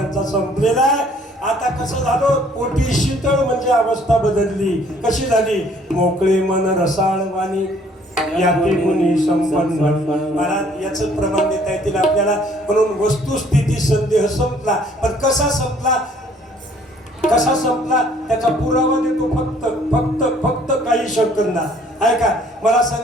संपलेला आहे. आता कसं झालं, पोटी शीतळ म्हणजे अवस्था बदलली. कशी झाली? मोकळे मन रसाळ वाणी याते गुणी संपन्न. महाराज याच प्रमाण देता येतील आपल्याला. म्हणून वस्तुस्थिती संदेह संपला. पण कसा संपला, कसा संपला त्याचा पुरावा देतो फक्त फक्त फक्त काही सेकंदा. ऐका, मला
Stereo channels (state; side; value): normal; both; correlation 0.60